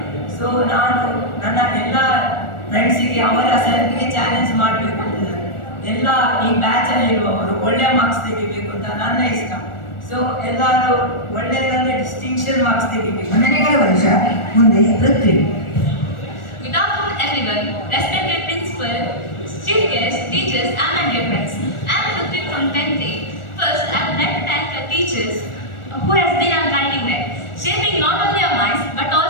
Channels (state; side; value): late; right; 1.4 ms